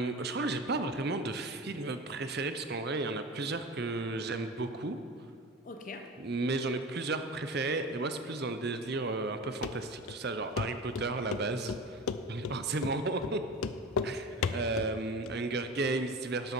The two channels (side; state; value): both; normal; correlation 0.32